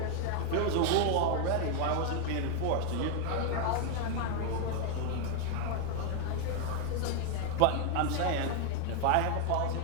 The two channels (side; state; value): both; different; correlation 0.00